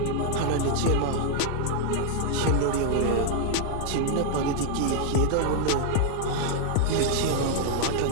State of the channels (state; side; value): different; both; correlation 0.00